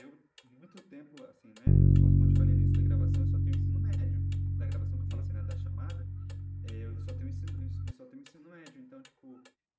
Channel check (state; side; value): identical; both; correlation 1.00